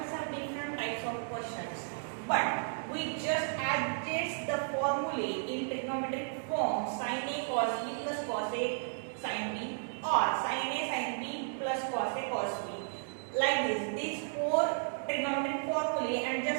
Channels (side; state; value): left; silent; digital silence